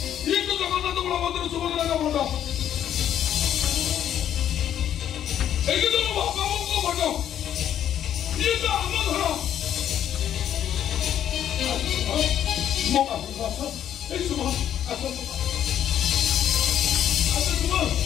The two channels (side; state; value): right; quieter; 10.3 dB